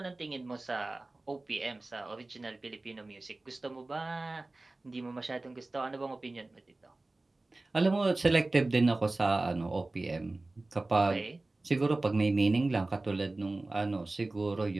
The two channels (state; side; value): quieter; left; 3.0 dB